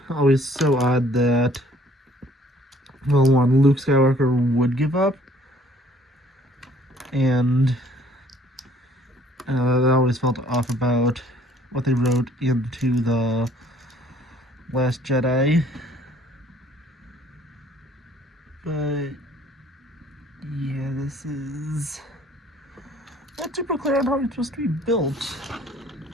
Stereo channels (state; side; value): normal; both; correlation 0.58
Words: always so odd that, well, one, Luke Skywalker would give up, and that always felt off about what they wrote into the Last Jedi. But yeah, this is not super clear on how it's supposed to be built.